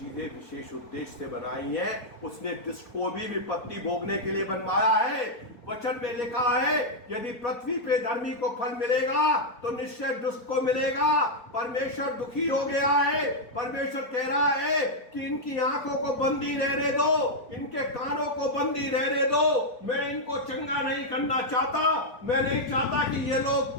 विशेष उद्देश्य से बनाई हैं। उसने दुष्ट को भी विपत्ति भोगने के लिए बनवाया है। वचन में लिखा है यदि पृथ्वी पे धर्मी को फल मिलेगा तो निश्चय दुष्ट को मिलेगा। परमेश्वर दुखी हो गया है। परमेश्वर कह रहा है कि इनकी आंखों को बंदी रहने दो, इनके कानों को बंदी रहने दो। मैं इनको चंगा नहीं करना चाहता। मैं नहीं चाहता कि ये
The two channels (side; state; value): right; late; 4.2 ms